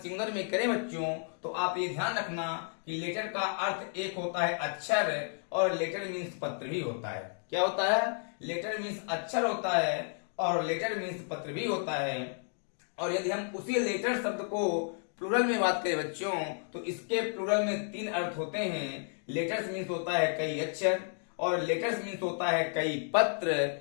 में करें बच्चों तो आप ये ध्यान रखना कि लेटर का अर्थ एक होता है अक्षर और लेटर मीन्स पत्र भी होता है। क्या होता है? लेटर मीन्स अक्षर होता है और लेटर मीन्स पत्र भी होता है। और यदि हम उसी लेटर शब्द को प्लूरल में बात करें बच्चों तो इसके प्लूरल में 3 अर्थ होते हैं। लेटर्स मीन्स होता है कई अक्षर और लेटर्स मीन्स होता है कई पत्र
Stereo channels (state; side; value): silent; right; 56 dB below the other